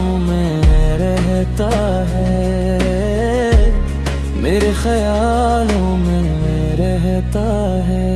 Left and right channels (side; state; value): both; identical; correlation 1.00